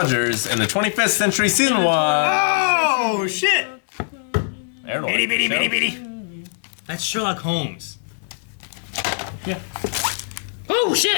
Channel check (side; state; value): right; silent; digital silence